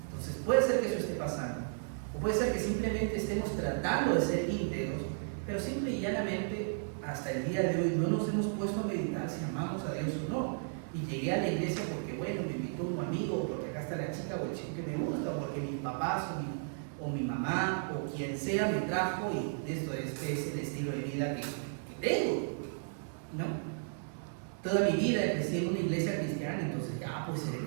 Entonces puede ser que eso esté pasando. O puede ser que simplemente estemos tratando de ser íntegros, pero simple y llanamente hasta el día de hoy no nos hemos puesto a meditar si amamos a Dios o no. Y llegué a la iglesia porque, bueno, me invitó un amigo, o porque acá está la chica o el chico que me gusta, o porque mis papás o mi mamá o quien sea me trajo y este es el estilo de vida que tengo, ¿no? Toda mi vida crecí en una iglesia cristiana, entonces ya pues ser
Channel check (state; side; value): silent; left; digital silence